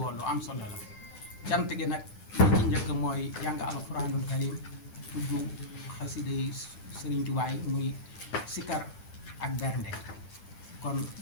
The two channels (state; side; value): late; right; 10 ms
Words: lu am solo la cant gi nag li ci njëkk mooy jàng alquranul karim tudd xasida yi Sëriñ Tuubaa yi muy sikar ak bernde kon